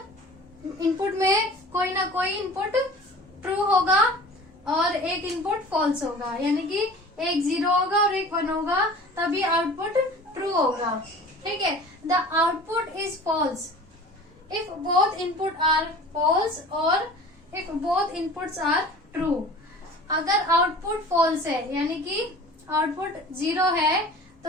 में कोई ना कोई इनपुट ट्रू होगा और एक इनपुट फॉल्स होगा, यानी कि एक 0 होगा और एक 1 होगा, तभी आउटपुट ट्रू होगा, ठीक है। The output is false if both input are false और if both inputs are true. अगर आउटपुट फॉल्स है यानी कि आउटपुट 0 है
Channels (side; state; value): both; normal; correlation 0.42